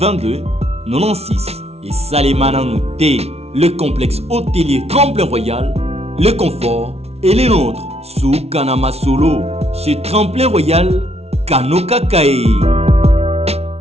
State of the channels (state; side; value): late; left; 0.31 ms